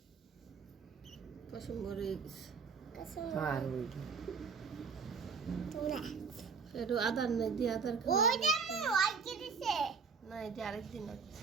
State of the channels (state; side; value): quieter; left; 5.4 dB